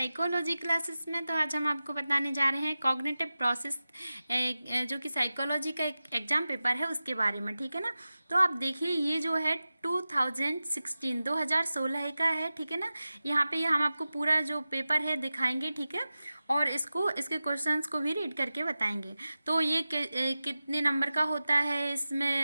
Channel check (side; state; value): both; inverted; correlation -0.95